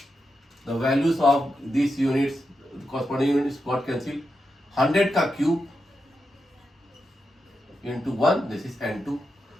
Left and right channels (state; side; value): normal; both; correlation 0.87